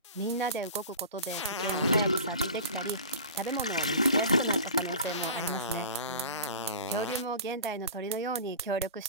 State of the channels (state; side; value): inverted; both; correlation -0.36